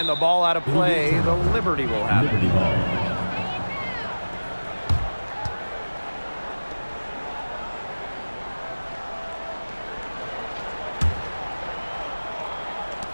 the ball out of play. The Liberty will have it.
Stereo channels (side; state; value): both; inverted; correlation -1.00